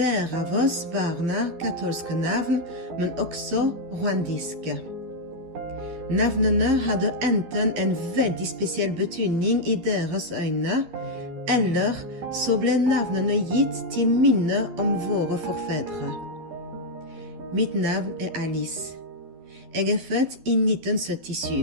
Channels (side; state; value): left; late; 12 ms